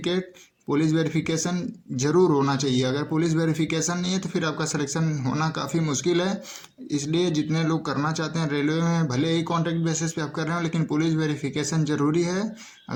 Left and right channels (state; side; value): identical; both; correlation 1.00